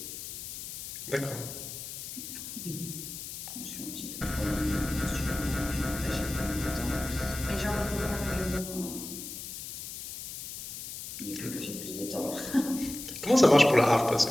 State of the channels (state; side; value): noise; left; hiss, 9 dB below the sound